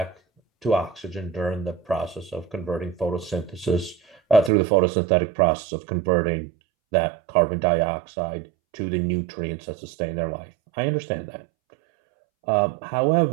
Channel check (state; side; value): drops out; left; at 4.5 s